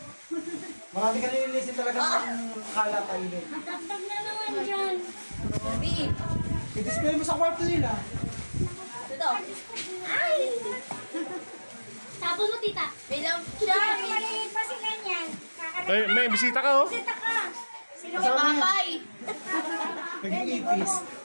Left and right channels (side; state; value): both; inverted; correlation -1.00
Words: Marami ka nililisin talaga ng kalat tayo din. Natagtag na naman dyan. Kurumi! I-display mo sa kwarto nila. Ito. Ay! Tapos mo, tita. Bilang siya. Maliit pa sila niyan. Ay, may bisita ka oh. Bisita ka. Sino Si Papay. Naging ipis.